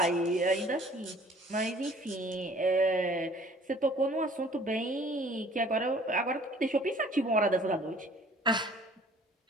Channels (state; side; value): normal; both; correlation 0.53